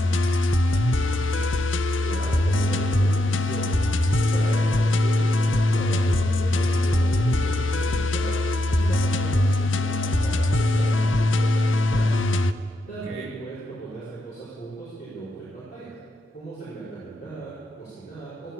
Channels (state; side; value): normal; both; correlation 0.83